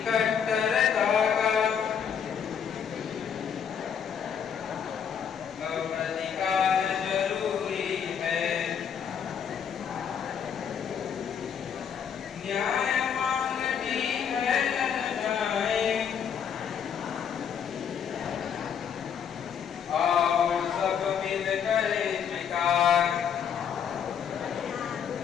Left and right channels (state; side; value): quieter; right; 7.7 dB